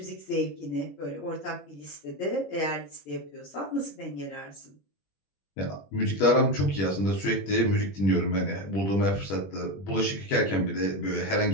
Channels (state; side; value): late; right; 21 ms